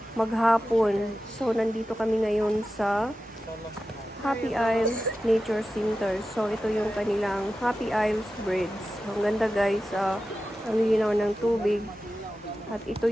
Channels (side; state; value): both; normal; correlation 0.93